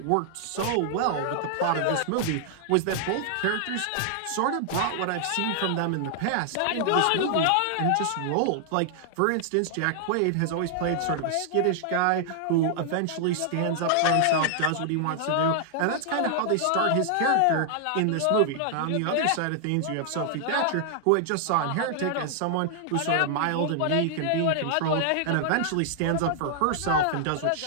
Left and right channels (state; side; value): different; both; correlation -0.01